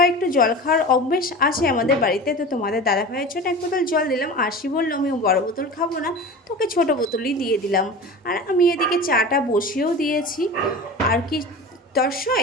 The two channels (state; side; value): normal; both; correlation 0.33